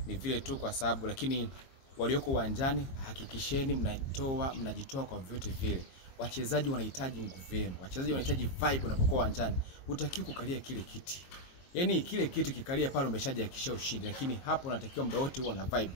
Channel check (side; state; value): right; late; 22 ms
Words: Ni vile tu kwa sababu, lakini walioko uwanjani hakikisheni mnajitoa kwa vyote vile. Wachezaji wanahitaji nguvu yenu. Wachezaji wanahitaji vibe unapokuwa uwanjani. Hutakiwi kukalia kile kiti. Yaani kile kiti kikalia pale umeshajihakikishia ushindi, lakini hapo unatakiwa muda wote uwe na vibe.